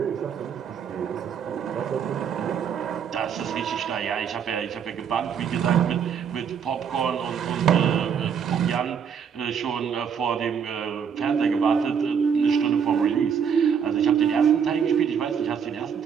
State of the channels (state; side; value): quieter; left; 7.3 dB